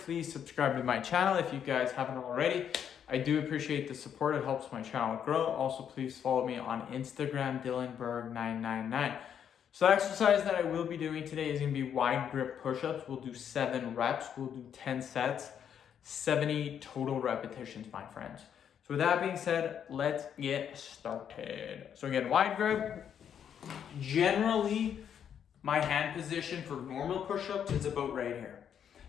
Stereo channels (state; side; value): quieter; right; 8.6 dB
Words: subscribe to my channel if you guys haven't already. I do appreciate the support. It helps my channel grow. Also, please follow me on Instagram, DylanBerg999. So the exercise that I will be doing today is going to be wide grip push-ups. We'll do 7 reps. We'll do 10 sets, 70 total repetitions, my friends. So with that being said, let's get started. So again, wide grip. Generally, my hand position for normal push-ups is about right here.